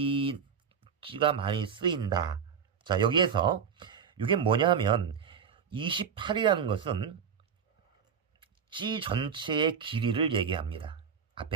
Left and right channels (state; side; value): quieter; left; 7.0 dB